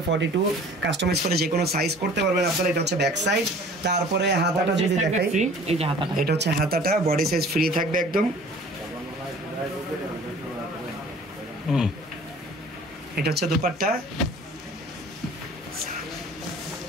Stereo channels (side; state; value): both; normal; correlation 0.48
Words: 42 কাস্টমাইজ করে যে কোনো সাইজ করতে পারবেন আপনারা। এটা হচ্ছে ব্যাক সাইড। তারপরে হাতাটা যদি দেখাই, এটা হচ্ছে হাতাটা, বডি সাইজ ফ্রি থাকবে একদম। এটা হচ্ছে দুপাট্টা।